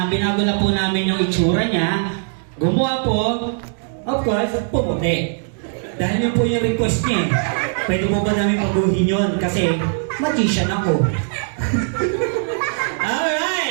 binago na po namin yung itsura niya. Gumawa po, of course, pumuti. Dahil yun po yung request niya. Pwede mo ba namin paguhin yun? Kasi magician ako.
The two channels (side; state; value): left; silent; digital silence